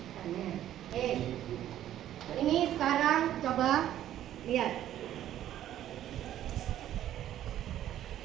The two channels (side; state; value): left; quieter; 12.0 dB